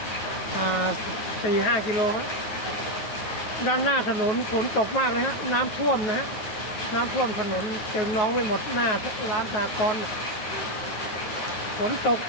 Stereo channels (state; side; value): late; right; 9.4 ms